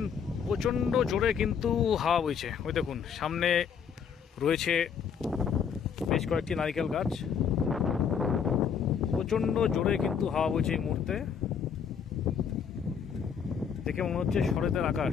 প্রচণ্ড জোরে কিন্তু হাওয়া বইছে। ওই দেখুন সামনে রয়েছে বেশ কয়েকটি নারিকেল গাছ। প্রচণ্ড জোরে কিন্তু হাওয়া বইছে এই মুহূর্তে। দেখে মনে হচ্ছে শরতের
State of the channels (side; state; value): right; quieter; 7.2 dB